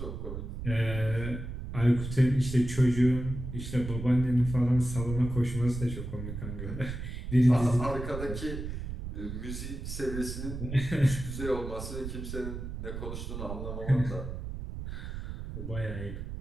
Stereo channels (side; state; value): right; noise; rumble, 7 dB below the sound